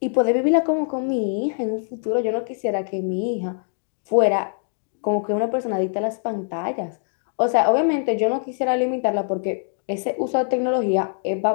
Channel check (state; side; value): silent; right; digital silence